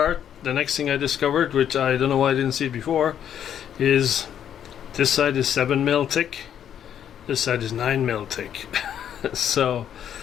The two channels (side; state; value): right; quieter; 9.5 dB